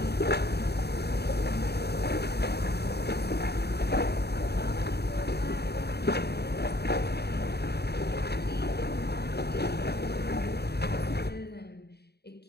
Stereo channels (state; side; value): late; right; 0.47 ms